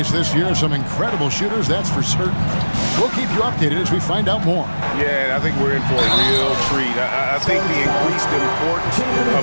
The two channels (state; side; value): inverted; both; correlation -1.00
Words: this year. Some incredible shooters, that's for certain. We'll keep you updated as we find out more. Yeah, I think we're in for a real treat. I think the increased importance